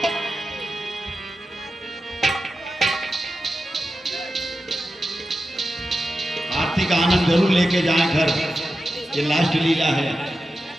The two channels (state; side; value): normal; both; correlation 0.92